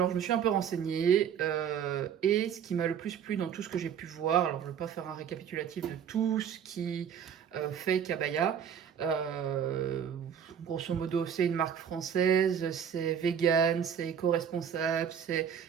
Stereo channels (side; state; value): left; quieter; 8.2 dB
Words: je me suis un peu renseignée et ce qui m'a le plus plu dans tout ce que j'ai pu voir, alors je ne vais pas faire un récapitulatif de tout ce qui fait Kabaya, grosso modo c'est une marque française, c'est vegan, c'est éco-responsable, c'est